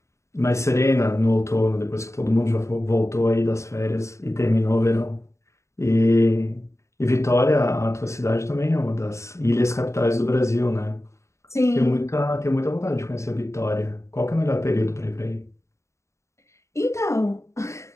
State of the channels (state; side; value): late; right; 0.14 ms